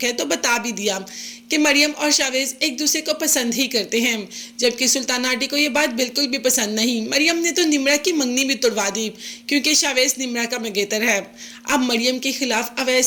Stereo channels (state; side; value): identical; both; correlation 1.00